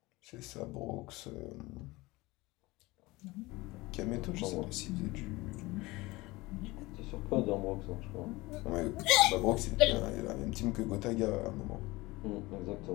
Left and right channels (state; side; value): quieter; right; 21.3 dB